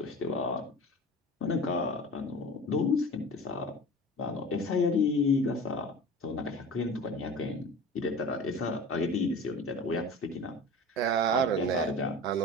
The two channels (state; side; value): normal; both; correlation 0.36